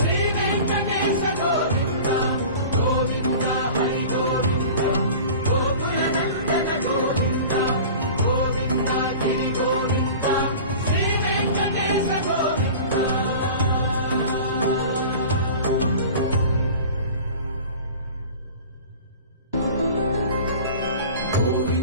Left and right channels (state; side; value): inverted; both; correlation -0.39